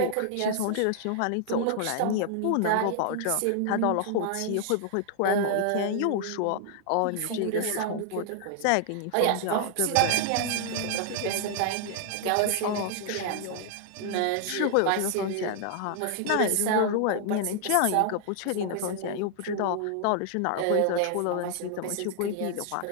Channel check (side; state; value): both; different; correlation 0.00